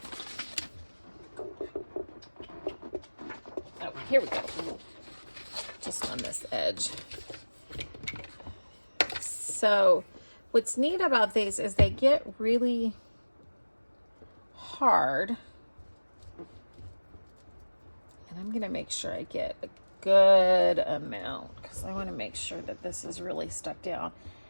Here we go. Just on this edge. So what's neat about these is they get really hard. And I'm going to make sure I get a good amount because I want to make sure that this is really stuck down.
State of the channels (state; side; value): inverted; both; correlation -1.00